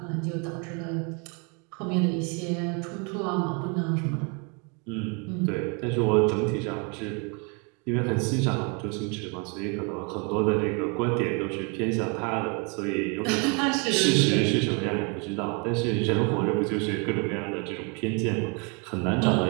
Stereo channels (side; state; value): left; quieter; 33.9 dB